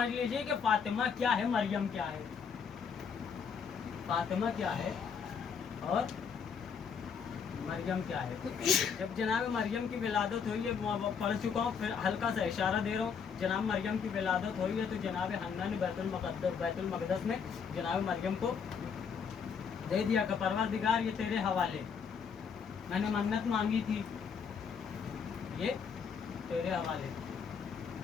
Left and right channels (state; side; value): quieter; right; 6.4 dB